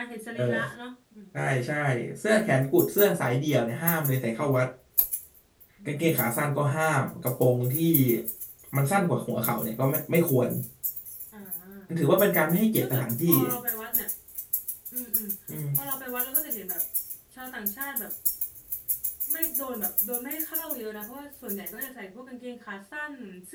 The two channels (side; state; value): both; identical; correlation 1.00